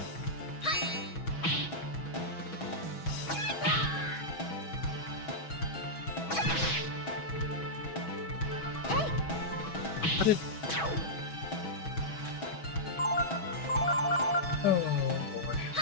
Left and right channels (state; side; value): late; right; 6.2 ms